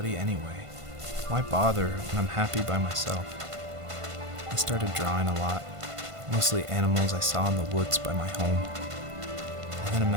anyway? Why bother when I'm happy by myself? I started drawing a lot, mostly animals I saw in the woods by my home. I then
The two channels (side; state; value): left; late; 1.5 ms